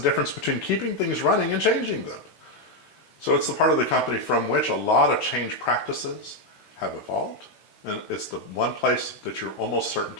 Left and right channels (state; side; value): late; right; 16 ms